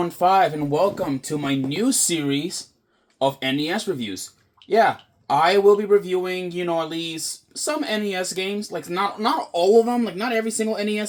and welcome to my new series of NES reviews. Yeah, I will be reviewing, at least some NES games, like not all of them, like not every single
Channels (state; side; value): identical; both; correlation 1.00